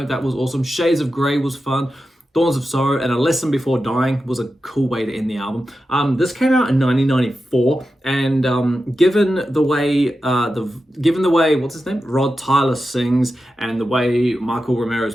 was awesome. Shades of Grey was fun. Thorns of Sorrow and A Lesson Before Dying was a cool way to end the album. This came out in 1994, and given the way what's his name, Rod Tyler sings, and the way Michael Romero's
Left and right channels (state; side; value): normal; both; correlation 0.91